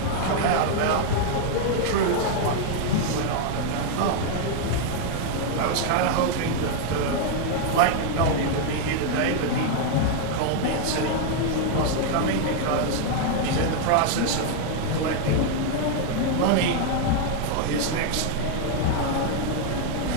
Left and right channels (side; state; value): both; different; correlation 0.00